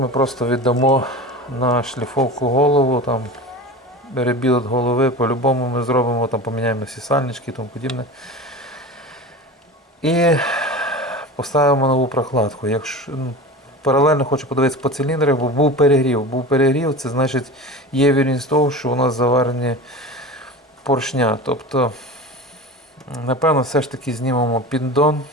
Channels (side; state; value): both; normal; correlation 0.32